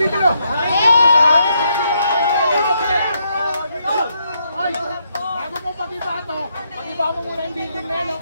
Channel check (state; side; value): inverted; both; correlation -0.77